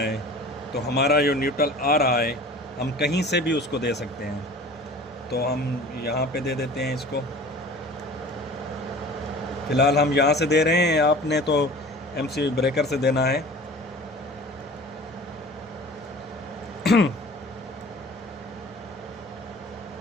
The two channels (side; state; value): both; normal; correlation 0.42